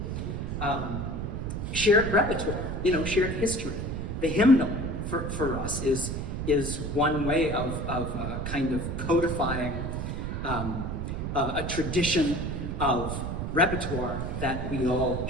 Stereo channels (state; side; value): noise; right; rumble, 3 dB below the sound